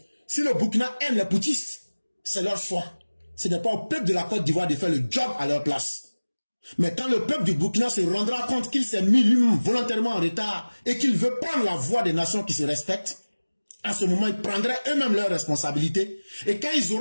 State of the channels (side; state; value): both; inverted; correlation -1.00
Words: si le Burkina aime les putschistes, c'est leur choix. Ce n'est pas au peuple de la Côte d'Ivoire de faire le job à leur place. Mais quand le peuple du Burkina se rendra compte qu'il s'est mis lui-même volontairement en retard et qu'il veut prendre la voie des nations qui se respectent, à ce moment, ils prendraient eux-mêmes leurs responsabilités. Et quand ils